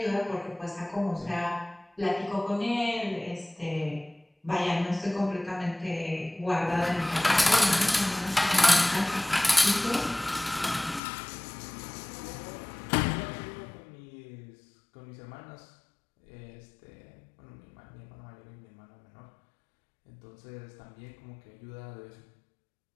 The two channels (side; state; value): right; drops out; at 11.0 s